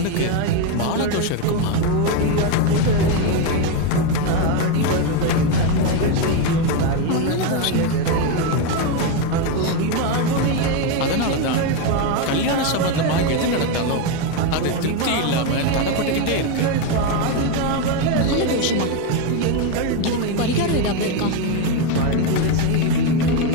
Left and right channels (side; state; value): both; different; correlation 0.03